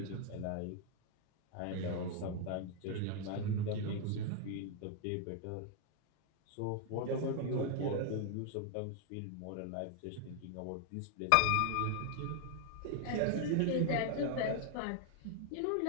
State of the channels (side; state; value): both; different; correlation 0.00